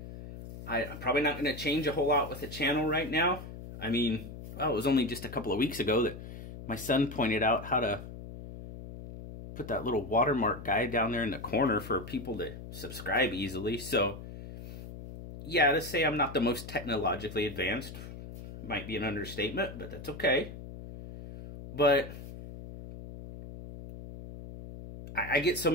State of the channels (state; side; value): noise; left; hum, 12 dB below the sound